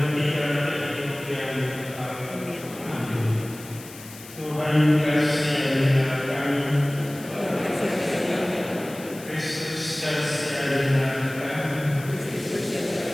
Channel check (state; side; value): noise; left; hiss, 17 dB below the sound